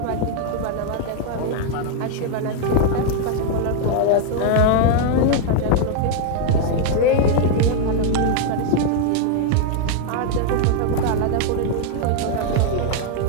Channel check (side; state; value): both; different; correlation 0.00